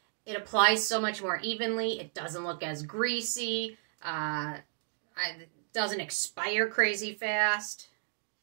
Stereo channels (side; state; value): left; silent; digital silence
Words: It applies so much more evenly. It doesn't look as greasy. It doesn't expire crazy fast.